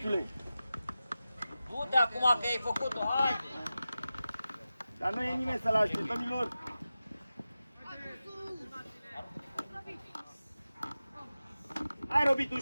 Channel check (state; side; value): inverted; both; correlation -0.94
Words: Du-te acum că ai făcut-o, hai. Dar nu e nimeni să-l aștept, domnilor. Hai, Robit,